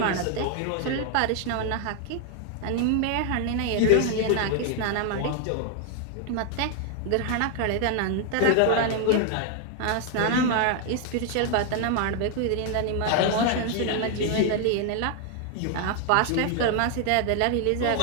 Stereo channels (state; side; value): different; both; correlation 0.00